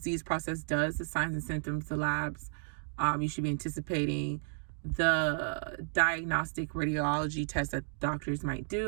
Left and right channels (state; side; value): silent; left; 56 dB below the other